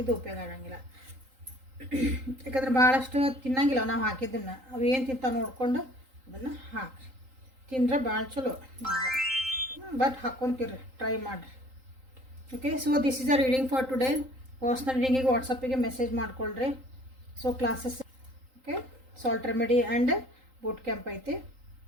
ಉಪಯೋಗ ಆಗಂಗಿಲ್ಲ. ಯಾಕಂದ್ರೆ ಭಾಳಷ್ಟು ತಿನ್ನಂಗಿಲ್ಲ ನಾವು ಹಾಕಿದ್ದನ್ನು. ಅವು ಏನು ತಿಂತಾವೆ ನೋಡಿಕೊಂಡು ಅದನ್ನು ಹಾಕ್ರಿ. ತಿಂದ್ರೆ ಭಾಳ ಚಲೋ. ಬಟ್ ಹಾಕ್ಕೊಂತೀರಿ, ಟ್ರೈ ಮಾಡಿರಿ. Okay, so this is a reading for today. Personal ರೀಡಿಂಗಿಗೆ ವಾಟ್ಸಪ್ಪಿಗೆ ಮೆಸೇಜ್ ಮಾಡ್ಕೊಳ್ರಿ. So classes okay, salt remedy and boot camp ಐತಿ,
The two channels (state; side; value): late; left; 3.8 ms